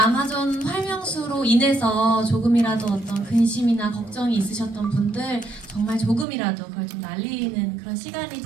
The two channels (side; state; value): left; drops out; at 6.2 s